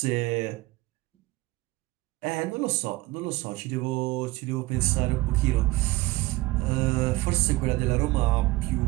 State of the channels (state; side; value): quieter; left; 19.8 dB